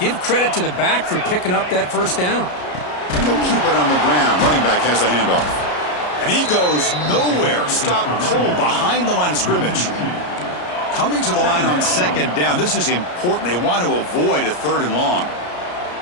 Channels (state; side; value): late; right; 33 ms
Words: credit to the back for picking up that first down. And they'll keep it on the ground. Running back has the handoff. And he goes nowhere. Stopped cold behind the line of scrimmage. Coming to the line on second down. This is important. They want to avoid a 3rd and long.